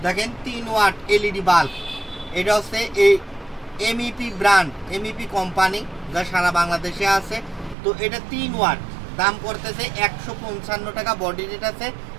দেখেন 3 ওয়াট এলইডি বাল্ব। এটা হচ্ছে এই এমইপি ব্র্যান্ড, এমইপি কোম্পানি, যা সারা বাংলাদেশে আছে। তো এটা 3 ওয়াট, দাম করতেছে 155 টাকা। বডি রেট আছে,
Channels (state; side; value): drops out; left; at 7.8 s